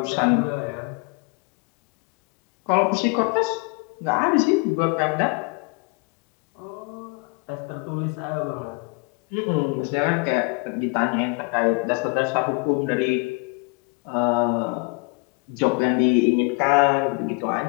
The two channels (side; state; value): right; quieter; 31.3 dB